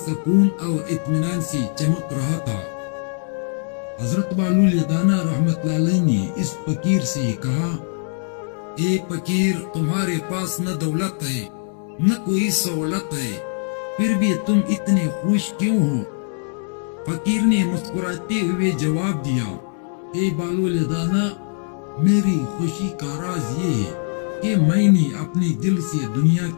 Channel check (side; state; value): right; silent; 64 dB below the other